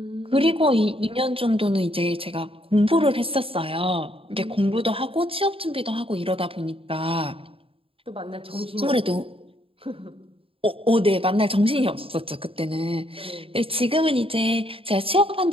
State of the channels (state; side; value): late; left; 0.27 ms